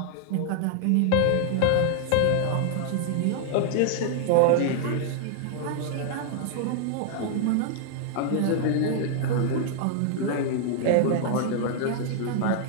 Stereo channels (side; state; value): both; different; correlation 0.00